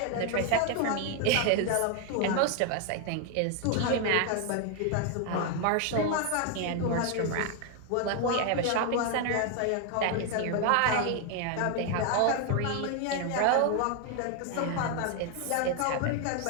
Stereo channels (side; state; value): both; different; correlation 0.01